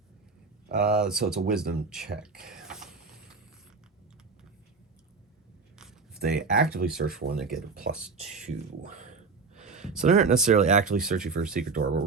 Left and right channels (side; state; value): left; quieter; 4.5 dB